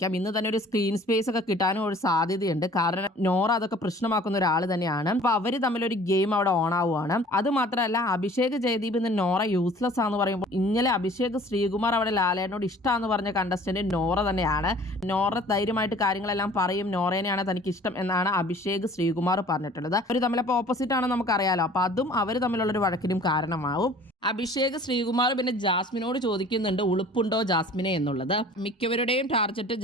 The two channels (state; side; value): normal; both; correlation 0.49